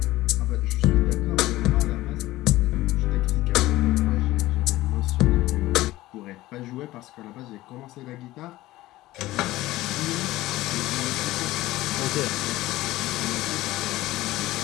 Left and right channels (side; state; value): right; quieter; 17.1 dB